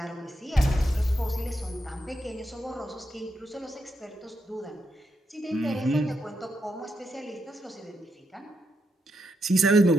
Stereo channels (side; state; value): both; normal; correlation 0.82